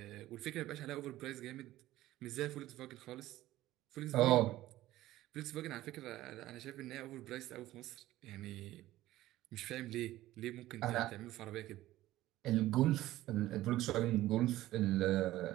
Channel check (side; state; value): left; quieter; 15.6 dB